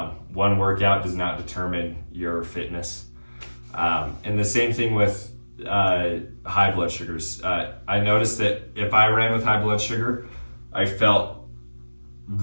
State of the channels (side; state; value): both; inverted; correlation -1.00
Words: One workout does not determine your fitness. And the same thing with high blood sugars. I noticed that if I ran with high blood sugar, I felt